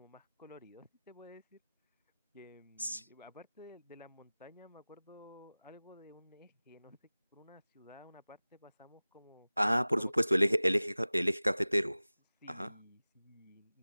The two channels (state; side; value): inverted; both; correlation -0.99